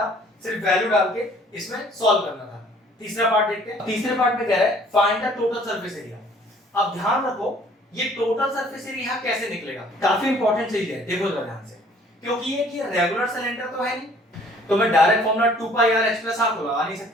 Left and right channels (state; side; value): normal; both; correlation 0.56